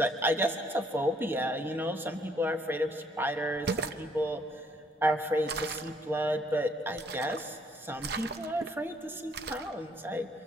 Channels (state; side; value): normal; both; correlation 0.66